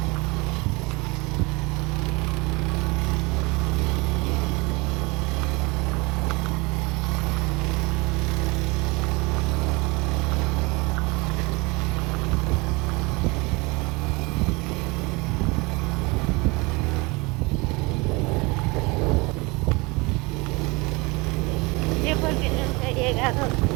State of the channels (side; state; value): left; quieter; 25.9 dB